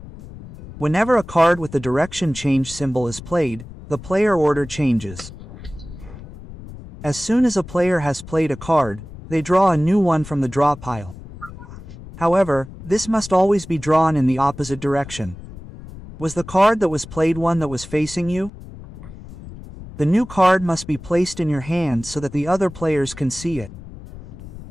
Whenever a card with the direction change symbol is played, the player order changes. As soon as a player has played a card, they draw a new one from the draw pile. However, this must always be drawn in the opposite direction. Was the card that was played one that was facing you? The new card must be placed in your hand so that the other players can see it.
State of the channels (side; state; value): left; noise; rumble, 15 dB below the sound